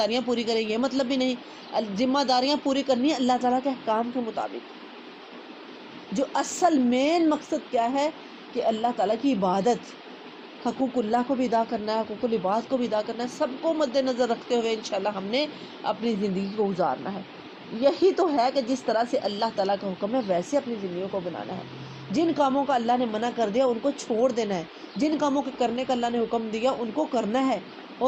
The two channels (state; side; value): identical; both; correlation 1.00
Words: پوری کرے، یہ مطلب بھی نہیں۔ ذمہ داریاں پوری کرنی ہے اللہ تعالیٰ کے احکام کے مطابق۔ جو اصل مین مقصد کیا ہے کہ اللہ تعالیٰ کی عبادت، حقوق اللہ کو بھی ادا کرنا ہے، حقوق العباد کو بھی ادا کرنا ہے، سب کو مد نظر رکھتے ہوئے انشاءاللہ ہم نے اپنی زندگی کو گزارنا ہے۔ یہی تو ہے کہ جس طرح سے اللہ تعالیٰ کا حکم ہے ویسے اپنی زندگیوں کو بنانا ہے۔ جن کاموں کا اللہ نے منع کر دیا ان کو چھوڑ دینا ہے، جن کاموں کے کرنے کا اللہ نے حکم دیا ان کو کرنا ہے،